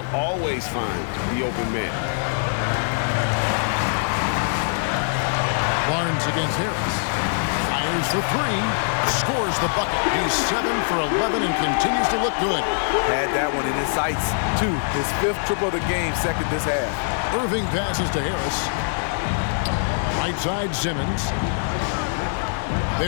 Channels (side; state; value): right; silent; digital silence